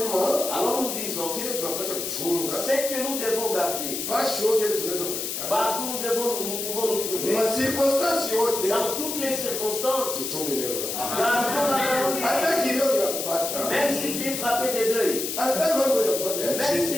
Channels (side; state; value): left; noise; hiss, 4 dB below the sound